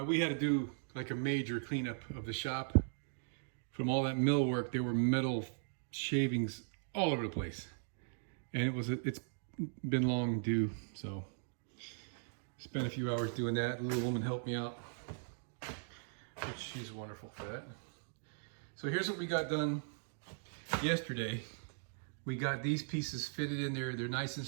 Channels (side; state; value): left; silent; digital silence